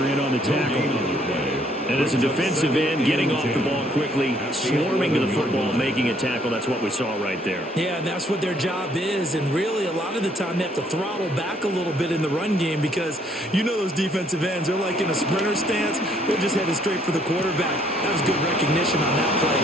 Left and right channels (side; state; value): both; normal; correlation 0.66